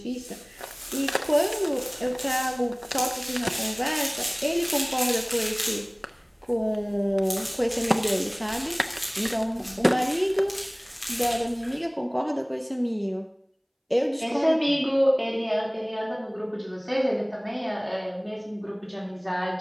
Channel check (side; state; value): both; identical; correlation 1.00